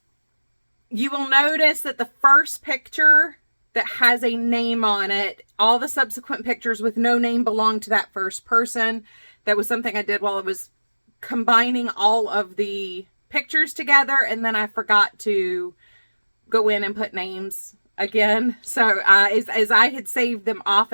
you will notice that the first picture that has a name on it, all the subsequent pictures with no name belong to that first person. That was something I did while I was combining all of the pictures together, and then I forgot to go in and put names again. So as I had saved them off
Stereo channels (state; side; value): inverted; both; correlation -1.00